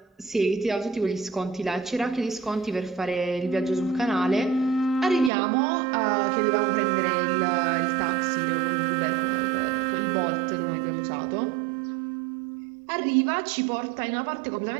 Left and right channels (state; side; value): drops out; left; at 5.3 s